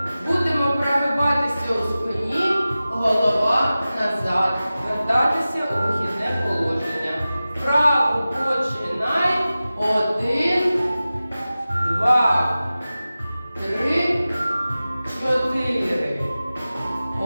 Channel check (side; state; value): both; inverted; correlation -0.96